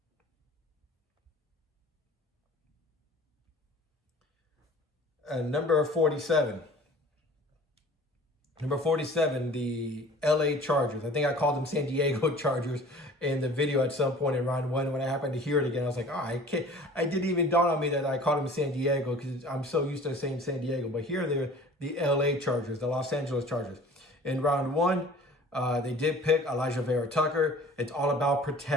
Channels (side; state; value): both; normal; correlation 0.46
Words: Number 47. Number 47, the LA Chargers. I think I called them San Diego Chargers in the video at some point in round 1. When I happened to hear it again, I was like, I didn't even dawn on me that I called them San Diego, because I'm so used to saying San Diego. But here they're the LA Chargers, the Los Angeles Chargers. In round 1, they did pick Elijah Vera Tucker. It's all about